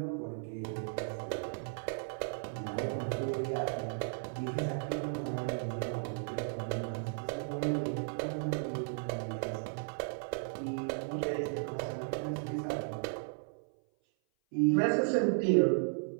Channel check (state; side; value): silent; left; 54 dB below the other